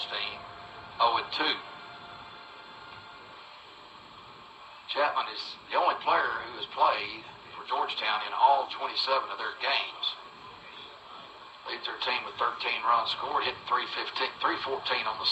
0-2. Chapman is the only player who has played for Georgetown in all 27 of their games. Leads their team with 13 runs scored, hitting 314 on the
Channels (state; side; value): identical; both; correlation 1.00